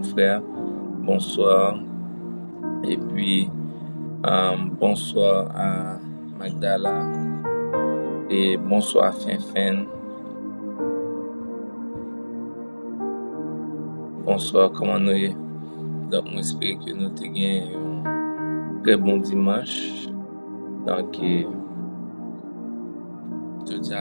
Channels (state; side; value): inverted; both; correlation -1.00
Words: frère, bonsoir. Et puis bonsoir à Magdala et bonsoir à Finfen. Bonsoir, comment nous est? Donc, j'espère que nous avons gagné un très bon dimanche. Donc, et